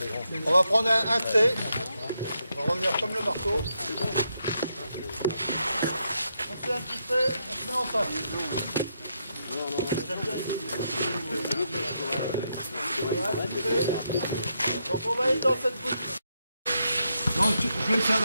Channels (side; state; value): both; inverted; correlation -0.80